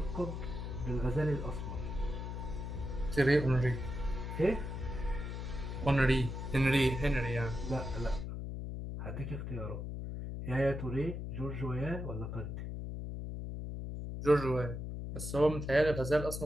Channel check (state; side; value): noise; left; hum, 5 dB below the sound